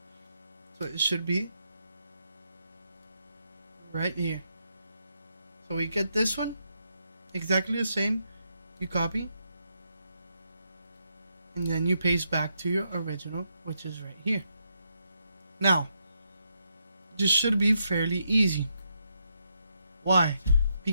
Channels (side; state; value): both; inverted; correlation -0.80